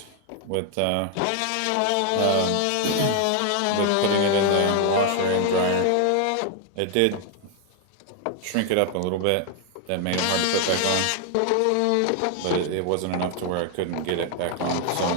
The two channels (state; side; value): different; both; correlation 0.00